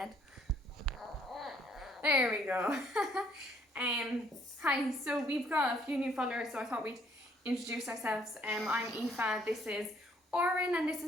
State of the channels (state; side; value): normal; both; correlation 0.64